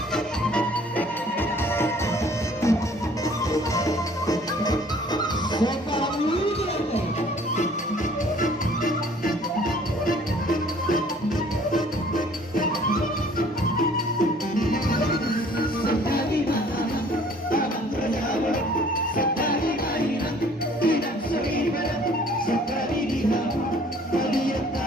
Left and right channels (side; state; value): both; normal; correlation 0.55